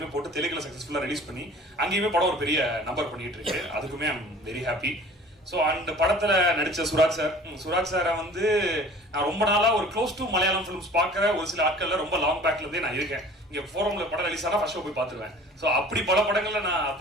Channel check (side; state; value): both; normal; correlation 0.46